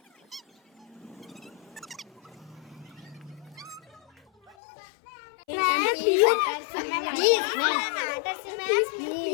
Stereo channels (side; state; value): right; drops out; at 4.5 s